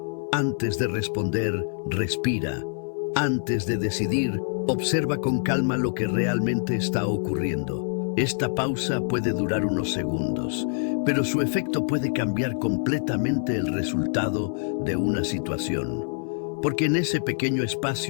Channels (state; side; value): silent; right; 59 dB below the other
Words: Antes de responder, respira. Antes de decidir, observa con calma lo que realmente está ocurriendo. Esta pausa puede durar unos segundos, pero su efecto puede cambiar completamente el resultado de una situación. Porque en ese pequeño